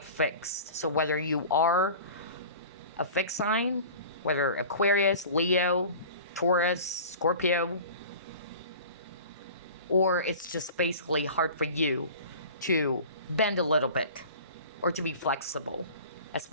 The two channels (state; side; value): inverted; both; correlation -0.39